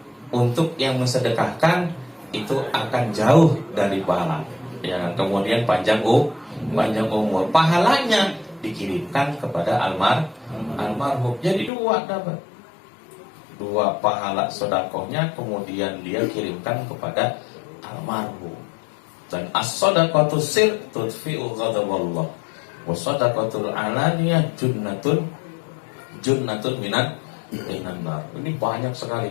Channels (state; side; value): drops out; right; at 11.7 s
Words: Untuk yang mensedekahkan itu akan jauh dari pahala. Ya, kemudian panjang umur. Pahalanya dikirimkan kepada almarhum. Jadi dapat dua pahala sedekahnya, kemudian dia kirimkan kepada almarhum. Dan as-shadaqatu sir tudfi'u ghadaballah. Wa shadaqatul alaniyah junnatun minan. Ini banyak